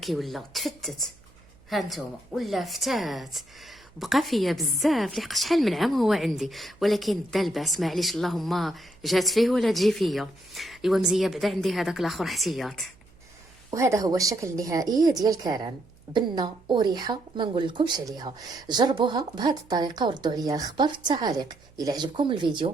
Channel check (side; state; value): right; noise; hum, 28 dB below the sound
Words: ولا تفتت. ها نتوما ولا فتات. بقى فيا بزاف لحق شحال من عام هو عندي، ولكن دا الباس معليش، اللهم جات فيه ولا تجي فيا. ايوا مزيه بعدا عندي هذاك الاخر احتياط. وهذا هو الشكل النهائي ديال كاران، بنه وريحه ما نقول لكمش عليها. جربوها بهذه الطريقه وردوا عليا الخبر في التعاليق. الى عجبكم